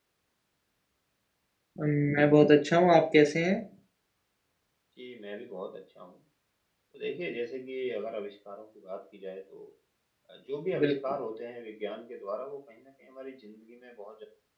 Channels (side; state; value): both; identical; correlation 1.00